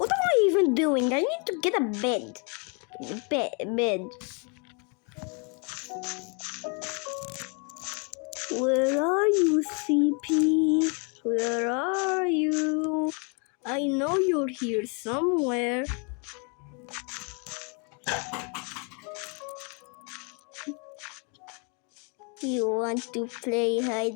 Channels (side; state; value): right; quieter; 35.2 dB